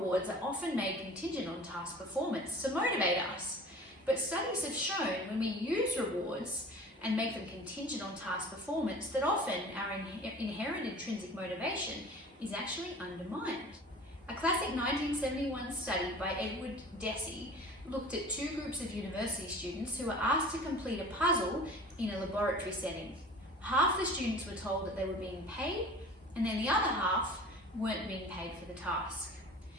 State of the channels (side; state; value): both; normal; correlation 0.42